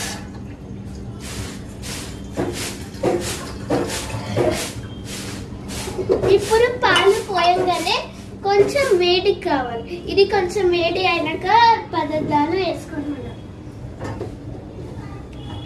ఇప్పుడు పాలు పోయంగానే కొంచెం వేడి కావాలి. ఇది కొంచెం వేడి అయినాక పదార్థాలు వేసుకుంటున్నాం.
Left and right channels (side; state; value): both; identical; correlation 1.00